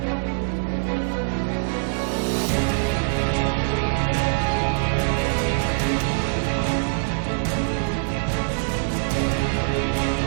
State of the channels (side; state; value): left; silent; digital silence